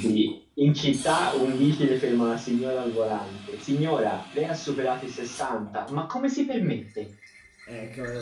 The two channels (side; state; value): both; identical; correlation 1.00